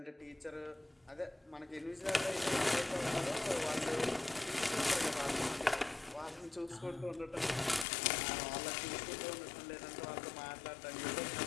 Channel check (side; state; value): right; drops out; at 7.9 s